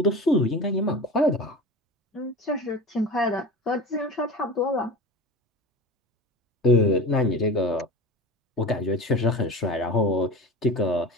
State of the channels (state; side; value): normal; both; correlation 0.32